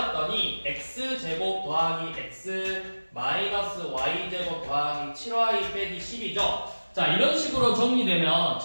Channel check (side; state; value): both; inverted; correlation -1.00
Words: x제곱 더하기 x 마이너스 y제곱 더하기 7y 빼기 10이죠. 자, 이런 식으로 정리되면